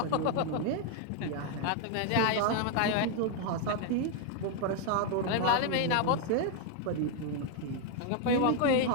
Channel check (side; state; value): both; different; correlation 0.01